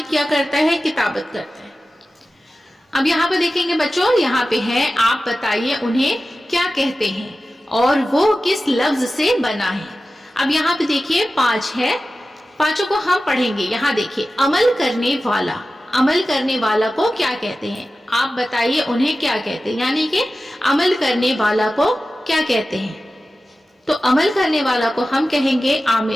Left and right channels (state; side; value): normal; both; correlation 0.94